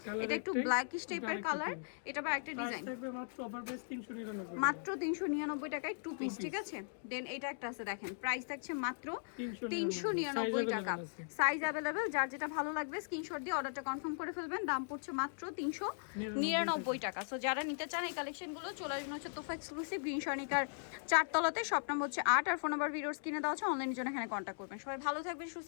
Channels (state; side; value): silent; right; digital silence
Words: এটা একটু ব্ল্যাকিশ টাইপের কালার। এটা বা একটা ডিজাইন থাকবে মাত্র অফার প্রাইস 399। মাত্র 399 টাকায় টু পিস, ঠিক আছে। দেন এটা একটা আছে, দেখেন প্রাইস থাকছে মাত্র 399 টাকা। সাইজ अवेलेबल, যার যেটা ভালো লাগবে স্ক্রিনশট দিয়ে অর্ডারটা কনফার্ম করে ফেলবেন। দাম পড়ছে মাত্র 399 টাকা। সো যারা নিতে চান এই কালেকশনগুলো চলে আসবেন হচ্ছে তোফা এক্সক্লুসিভ গ্রিন সনিকার 4 তলাতে। শপ নাম্বার হচ্ছে 8 আর ফোন নাম্বার ভিডিওস কিনে দেওয়া আছে। অনলাইনের জন্য এখানে কন্ট্যাক্ট করবেন। সবাই ভালো থাকবেন, সুস্থ